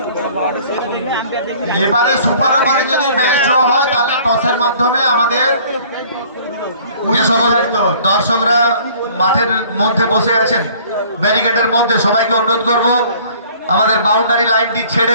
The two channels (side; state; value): both; inverted; correlation -0.53